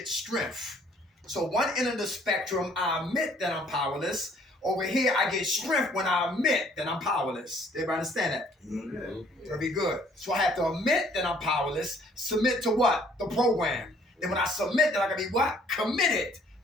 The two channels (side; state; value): both; normal; correlation 0.60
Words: strength? So one end of the spectrum, I admit that I'm powerless. Over here, I get strength when I admit that I'm powerless. Everybody understand that? Mm-hmm. Very good. So I have to admit that I'm powerless, submit to what? The program. Then when I submit, then I can be what? Committed